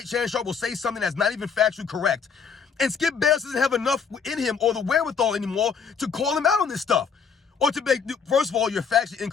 Shannon Sharpe will say something that's not even factually correct. And Skip Bayless doesn't have enough in him or the wherewithal anymore to call him out on this stuff. Or to make, first of all, your facts are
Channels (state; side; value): quieter; right; 6.1 dB